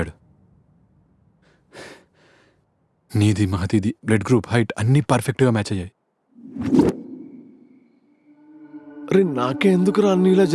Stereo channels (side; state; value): both; identical; correlation 1.00